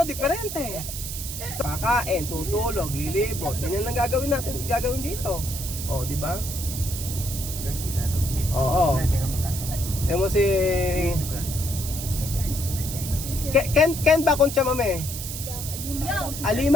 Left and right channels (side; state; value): right; noise; hiss, 7 dB below the sound